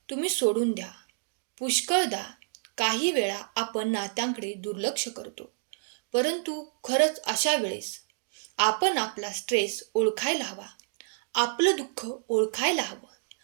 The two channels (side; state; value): left; silent; digital silence